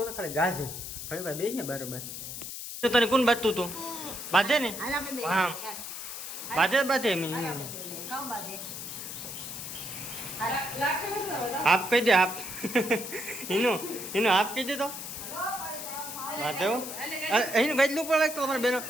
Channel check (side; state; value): left; noise; hiss, 8 dB below the sound